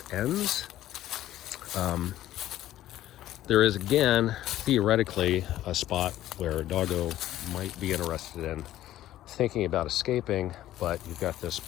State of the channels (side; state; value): right; quieter; 13.6 dB